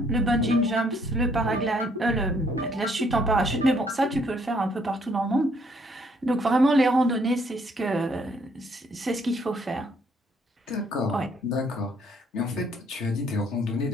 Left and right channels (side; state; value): both; normal; correlation 0.67